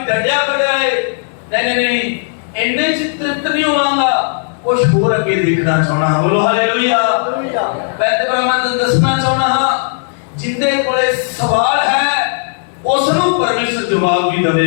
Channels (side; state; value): right; silent; digital silence